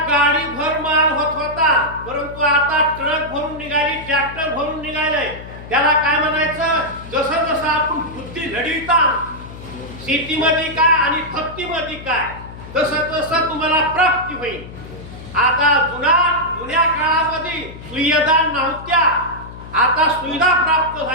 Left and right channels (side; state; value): left; noise; hum, 14 dB below the sound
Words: गाडी भर माल होत होता, परंतु आता ट्रक भरून निघाली, ट्रॅक्टर भरून निघाले. त्याला काय म्हणायचं? जसं जसं आपण बुद्धी लढविता शेतीमध्ये काय आणि भक्तीमध्ये काय, तसं तसं तुम्हाला प्राप्ती होईल. आता जुन्या काळामध्ये सुविधा नव्हत्या, आता सुविधा प्राप्त